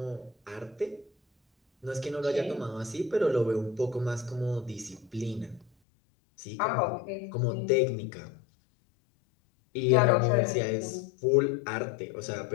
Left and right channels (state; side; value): drops out; right; at 5.7 s